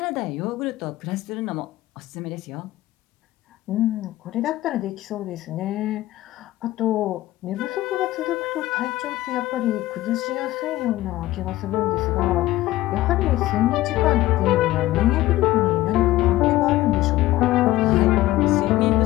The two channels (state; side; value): quieter; right; 16.3 dB